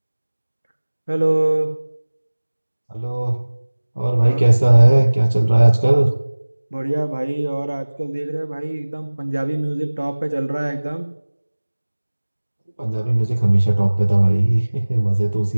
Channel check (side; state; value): both; inverted; correlation -1.00